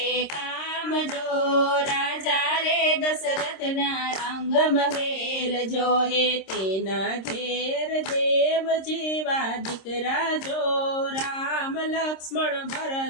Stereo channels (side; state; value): right; late; 26 ms